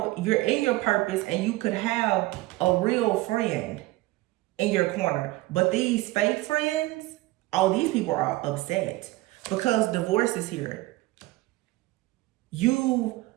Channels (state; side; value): quieter; left; 19.4 dB